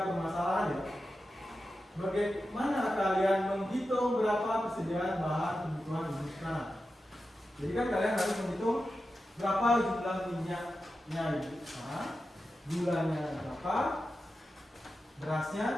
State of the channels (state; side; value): normal; both; correlation 0.91